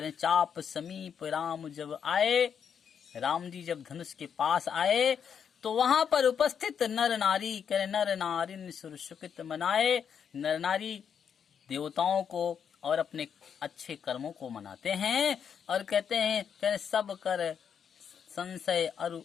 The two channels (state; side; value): quieter; right; 7.5 dB